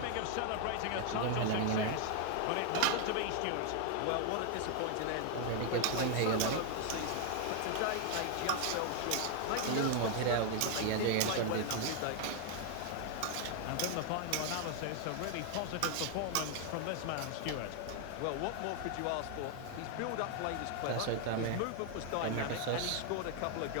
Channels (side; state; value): both; different; correlation 0.00